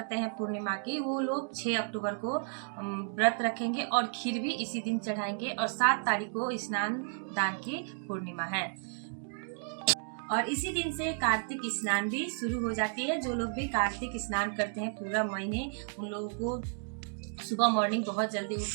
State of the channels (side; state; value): left; silent; 56 dB below the other